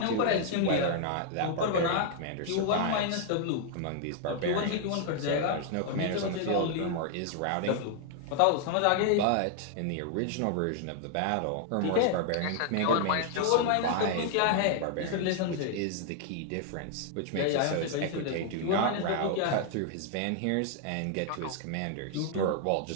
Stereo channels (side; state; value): both; different; correlation 0.00